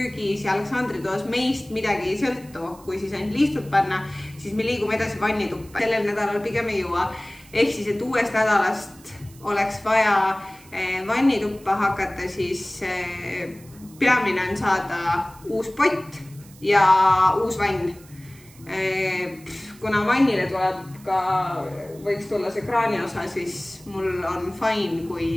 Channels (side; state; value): right; noise; hiss, 24 dB below the sound